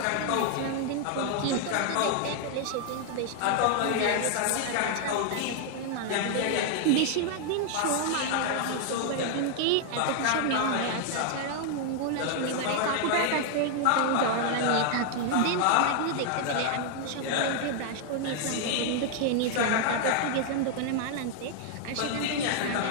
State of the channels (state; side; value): different; both; correlation 0.00